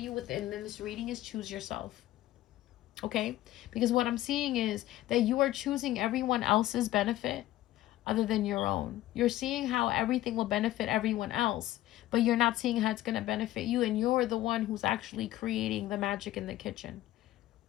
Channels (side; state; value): right; quieter; 15.2 dB